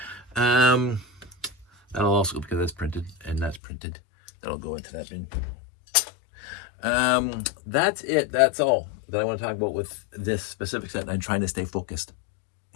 That'll also, because that's printed and that's printed, that'll go into that bin. That's it. That's all that I want to talk about with this specific set. I'm trying to stay focused.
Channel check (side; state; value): right; drops out; at 3.6 s